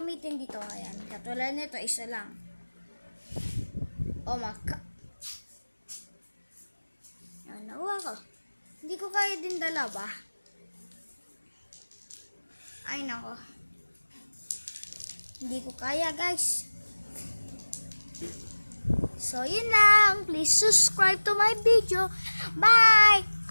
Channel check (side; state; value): both; inverted; correlation -1.00